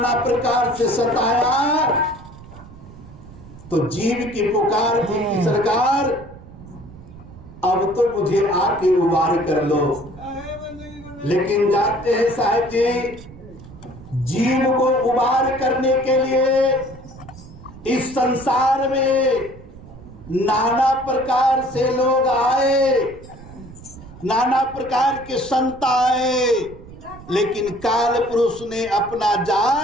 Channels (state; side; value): noise; right; rumble, 18 dB below the sound